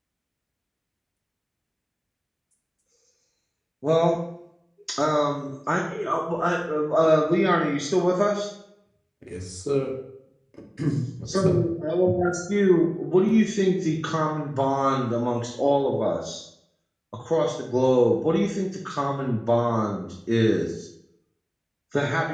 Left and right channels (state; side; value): identical; both; correlation 1.00